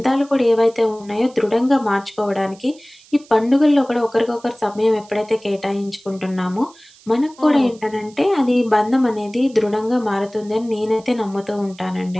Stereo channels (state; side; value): noise; right; hiss, 26 dB below the sound